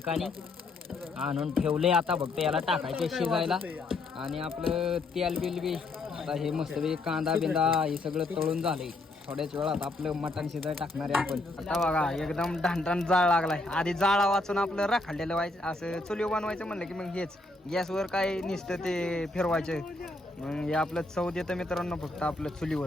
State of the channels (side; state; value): right; quieter; 3.0 dB